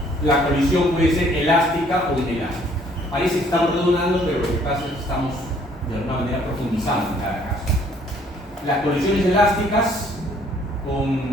la colisión puede ser elástica o inelástica. Parece que estamos redundando, pero lo que pasa es que estamos de alguna manera profundizando en cada caso. Las colisiones elásticas con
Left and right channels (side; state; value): both; normal; correlation 0.61